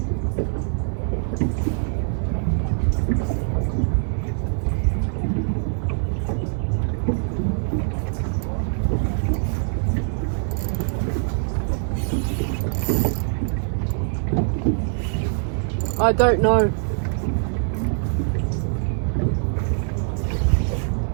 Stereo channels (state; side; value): silent; left; 63 dB below the other